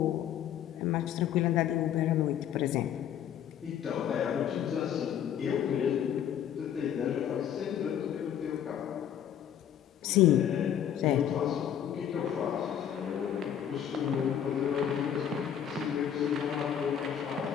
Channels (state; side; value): quieter; right; 9.6 dB